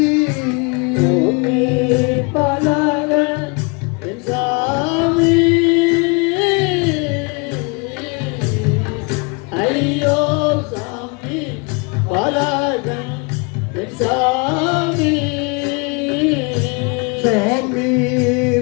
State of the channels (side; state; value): right; quieter; 31.5 dB